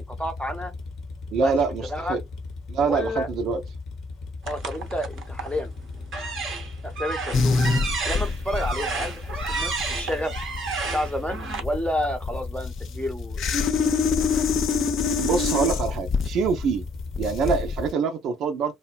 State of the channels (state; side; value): normal; both; correlation 0.64